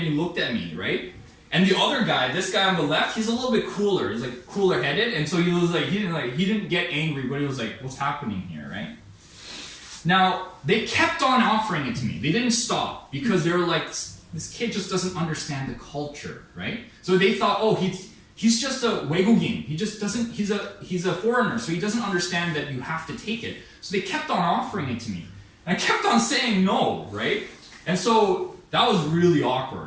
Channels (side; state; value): both; identical; correlation 1.00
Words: he looked at me, right? And the other guy, this guy on the left, he's a little bit cooler. He's like cooler headed, and so he was like he didn't get angry, but he was like, what's happening here, right? Now they kept on offering it to me. They didn't stop because they were like, this kid just doesn't understand the culture, right? So they thought, oh, he's just a 외국인. He just doesn't. He's a foreigner, so he doesn't understand that you have to take it. So they kept on offering it to me, and I kept on saying no, right? And so that was really